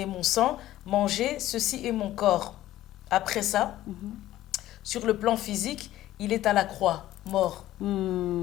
sang, mangez, ceci est mon corps ». Après ça, sur le plan physique, il est à la croix, mort.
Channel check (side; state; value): right; quieter; 14.4 dB